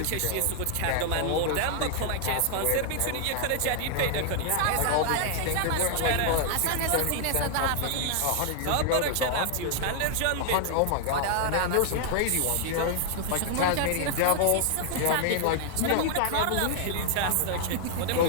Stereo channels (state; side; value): different; both; correlation 0.00